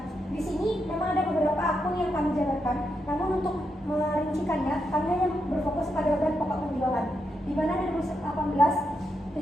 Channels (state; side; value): normal; both; correlation 0.83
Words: di sini memang ada beberapa akun yang kami jabarkan, namun untuk merincikannya kami hanya berfokus pada beban pokok penjualan, di mana dari 2018